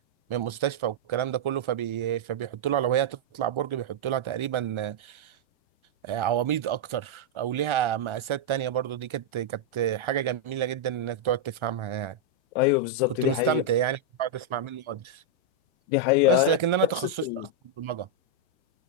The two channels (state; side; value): late; left; 1.4 ms